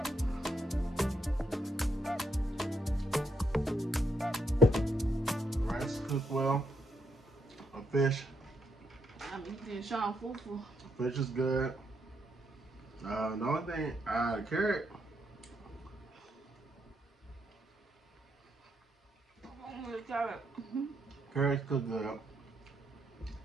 Rice cooked well. A fish. I'm eating Sean Fufu. Fish is good. The only thing, carrot. Carrot. Mm-hmm. Carrots cooked good.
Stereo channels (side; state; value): both; normal; correlation 0.77